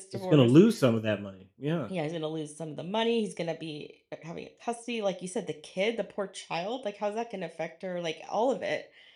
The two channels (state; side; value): identical; both; correlation 1.00